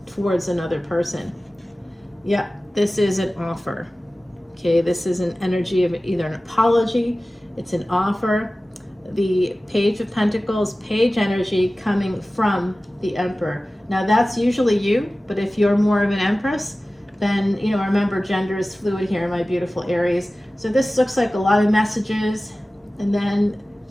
towards another person. Yeah, this is an offer. Okay, this is an energy of either an apology, it's an offer. The Page of Pentacles, page energy coming from the Emperor. Now that's usually you, but if you're more of an Empress, then, you know, remember gender is fluid here, my beautiful Aries. So this looks like a lot of messages, and then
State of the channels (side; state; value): both; normal; correlation 0.96